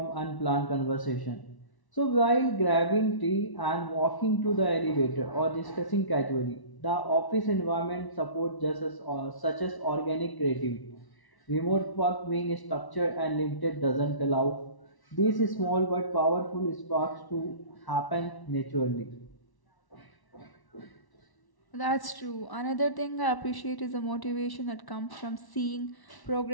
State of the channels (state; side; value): late; right; 1.1 ms